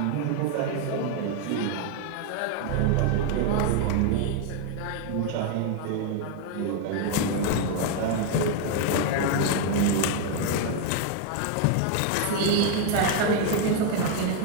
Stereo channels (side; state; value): both; different; correlation 0.01